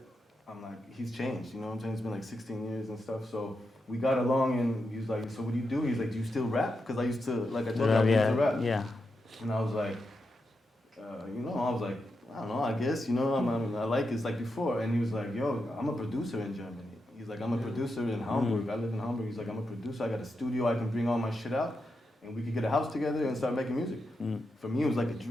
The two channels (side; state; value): both; normal; correlation 0.86